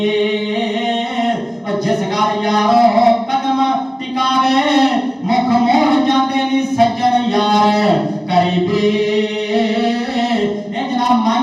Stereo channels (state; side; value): identical; both; correlation 1.00